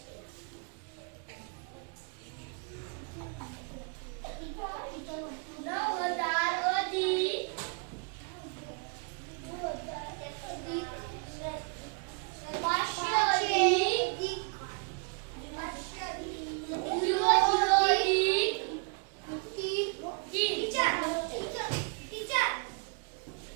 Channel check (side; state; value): left; quieter; 36.8 dB